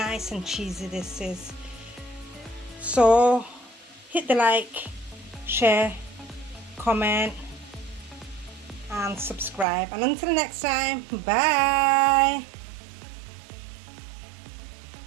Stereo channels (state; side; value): drops out; left; at 9.7 s